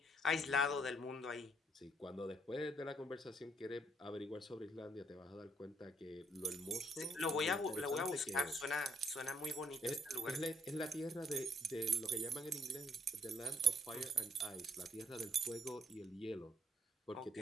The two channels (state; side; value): normal; both; correlation 0.66